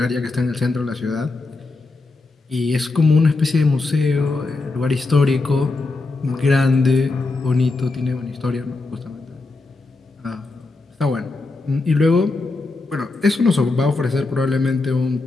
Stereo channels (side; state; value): right; quieter; 3.5 dB